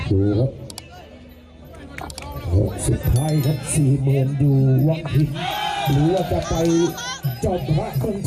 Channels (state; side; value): identical; both; correlation 1.00